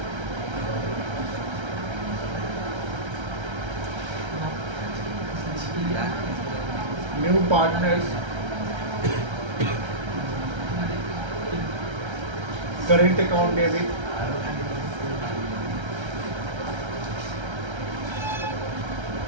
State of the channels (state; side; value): late; left; 1.3 ms